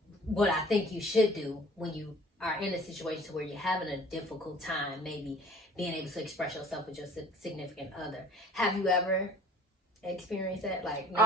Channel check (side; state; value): both; normal; correlation 0.49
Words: what I think you should do when you are in a situation where you're having a difficult time, maybe being able to express yourself with your significant other. Have you ever experienced that? Like